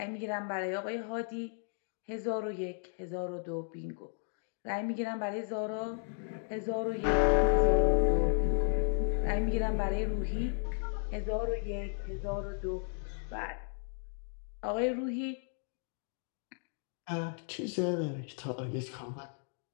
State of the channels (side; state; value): right; silent; 55 dB below the other